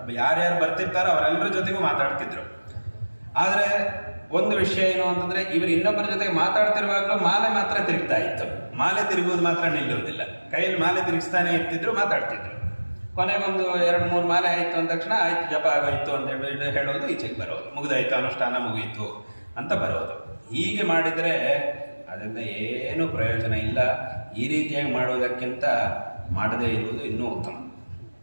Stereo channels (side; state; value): both; inverted; correlation -1.00